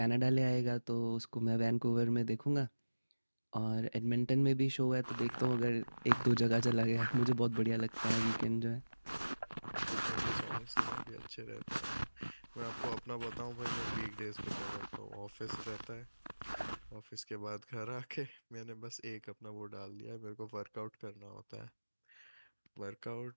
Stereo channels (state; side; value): inverted; both; correlation -1.00